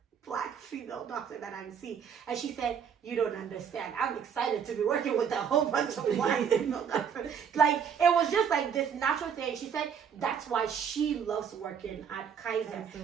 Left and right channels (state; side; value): quieter; left; 7.4 dB